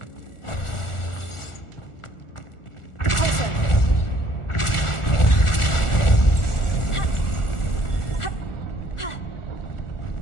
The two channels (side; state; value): right; late; 1.4 ms